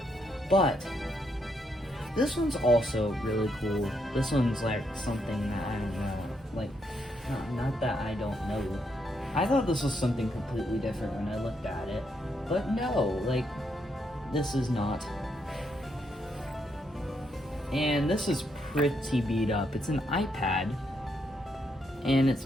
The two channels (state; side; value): normal; both; correlation 0.77